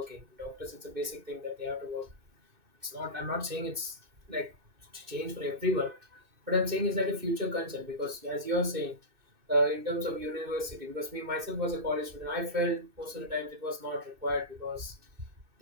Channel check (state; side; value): late; left; 2.6 ms